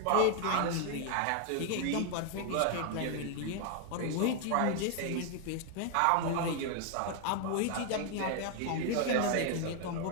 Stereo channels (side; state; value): both; different; correlation 0.00